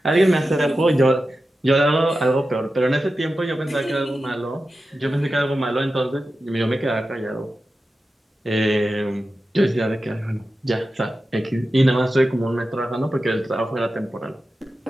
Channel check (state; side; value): normal; both; correlation 0.92